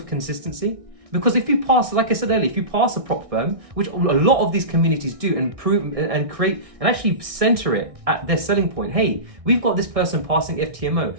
consistency? Because if you pass, like I said earlier, if you pass a prop firm, which a lot of these communities do, and prove and create and actually center it at their selling point. Hey, we've got this person passing FTMO.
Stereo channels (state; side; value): late; left; 1.6 ms